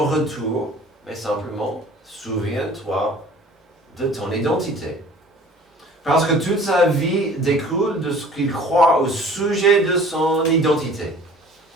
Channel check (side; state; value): both; normal; correlation 0.48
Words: retour. Mais simplement, souviens-toi de ton identité. Parce que toute sa vie découle de ce qu'il croit au sujet de son identité.